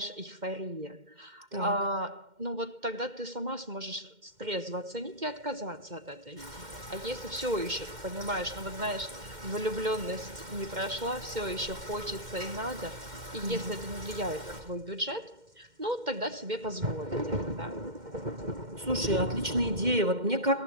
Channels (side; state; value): left; late; 2.1 ms